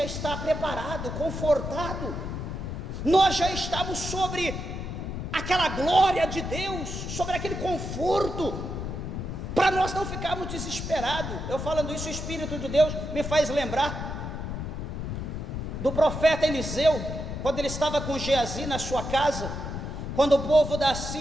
está preparado, confortado, nós já estamos sobre aquela glória de Deus, sobre aquele conforto, para nós não ficarmos desesperados. Eu falando isso, o Espírito de Deus me faz lembrar do profeta Eliseu, quando ele estava com Geazi na sua casa, quando o povo da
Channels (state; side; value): noise; left; rumble, 5 dB below the sound